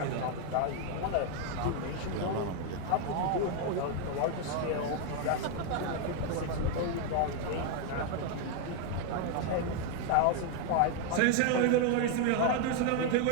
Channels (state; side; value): different; both; correlation 0.01